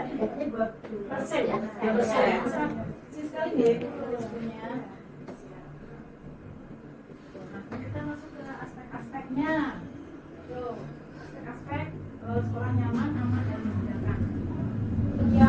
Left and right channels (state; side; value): identical; both; correlation 1.00